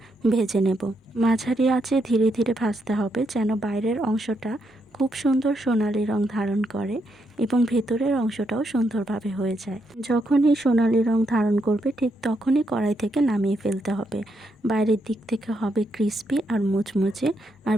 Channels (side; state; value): both; normal; correlation 0.79